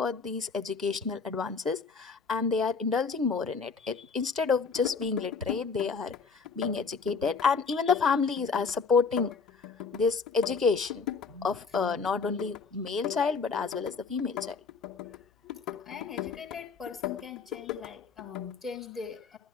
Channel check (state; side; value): quieter; right; 5.1 dB